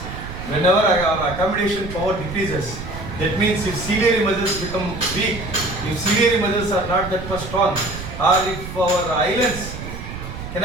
Whenever our accommodation power decreases, that means if ciliary muscles become weak, if ciliary muscles are not that much strong, or if our eyelids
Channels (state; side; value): noise; right; rumble, 10 dB below the sound